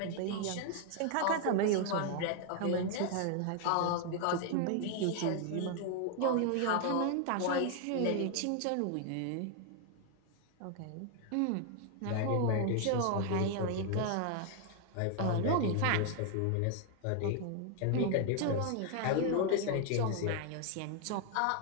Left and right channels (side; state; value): both; different; correlation 0.00